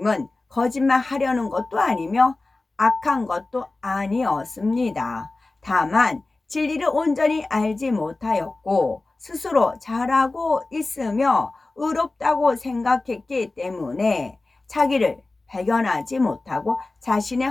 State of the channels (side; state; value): right; quieter; 3.2 dB